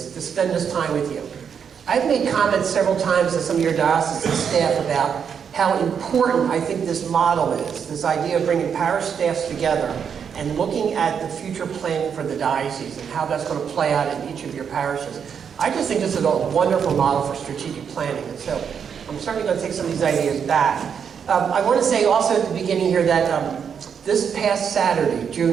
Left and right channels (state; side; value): quieter; left; 7.2 dB